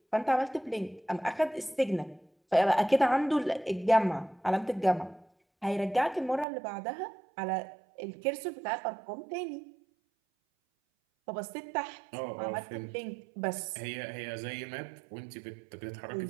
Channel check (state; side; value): drops out; left; at 6.5 s